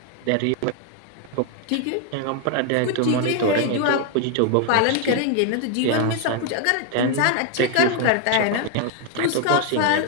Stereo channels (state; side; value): different; both; correlation 0.00